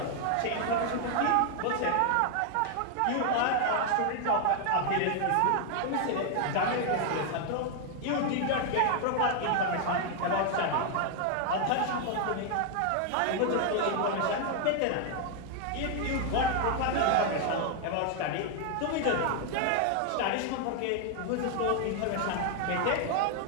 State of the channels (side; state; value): both; different; correlation 0.00